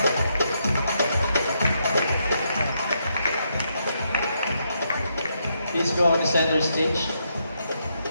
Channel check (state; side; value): inverted; both; correlation -0.79